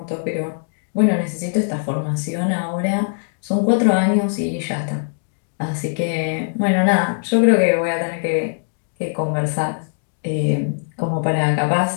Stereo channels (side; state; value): right; silent; digital silence